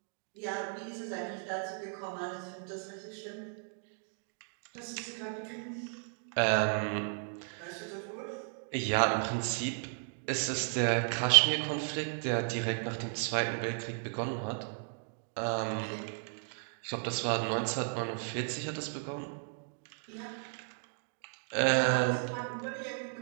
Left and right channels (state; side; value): silent; left; 55 dB below the other